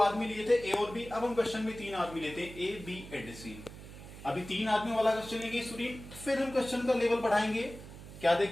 लिए थे, ए और बी, अब हम क्वेश्चन में 3 आदमी लेते हैं, ए बी एंड सी। अभी 3 आदमी वाला क्वेश्चन लेंगे स्टूडेंट, फिर हम क्वेश्चन का लेवल बढ़ाएंगे। क्या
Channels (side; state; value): right; noise; hum, 14 dB below the sound